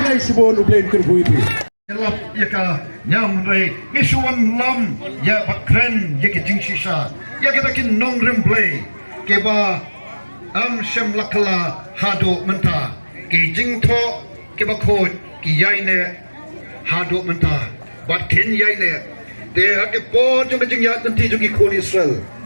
Shibun ublen kerbu itu Lap ya ka nyam rei ngisuan lam ya bakren ya ke jingsisa ya kita kin nong remblay ke ba am shem lakala hado menta ke jingtho ke ba khoit ke yaine hado menta bat ken yaine de ha ke po jong jing ya nanti jong ki khon Israel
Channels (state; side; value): inverted; both; correlation -1.00